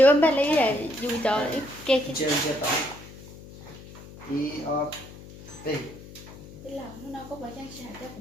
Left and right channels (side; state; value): left; noise; hum, 17 dB below the sound